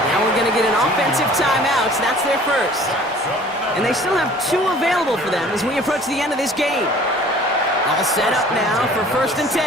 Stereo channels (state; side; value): normal; both; correlation 0.50